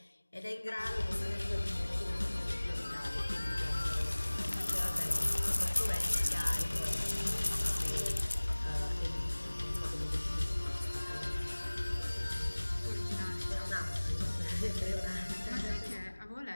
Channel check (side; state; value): both; inverted; correlation -1.00